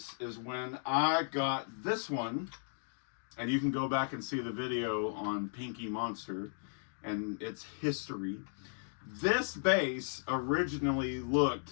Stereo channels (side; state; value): right; silent; digital silence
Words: is when I got this one, and you can go back and see the video on Pinky Monster and its history. This bass originally